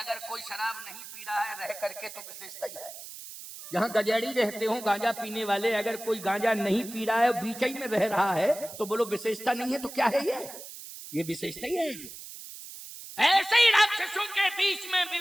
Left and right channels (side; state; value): right; noise; hiss, 13 dB below the sound